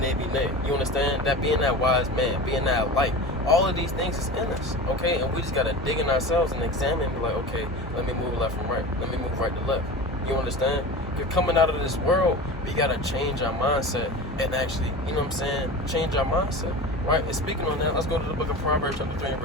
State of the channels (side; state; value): both; normal; correlation 0.31